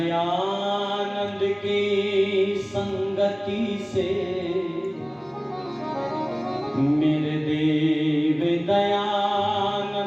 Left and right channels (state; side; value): identical; both; correlation 1.00